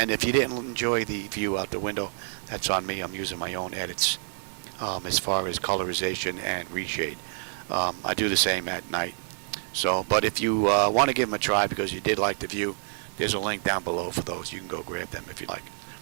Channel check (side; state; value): left; silent; digital silence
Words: if you didn't enjoy the view out the window, that's on me. I'm using my own edits as far as colorization and reshade. I do the same at night So, but if you want to give them a try because you did like the view, there's a link down below for those. You can go grab them if you like.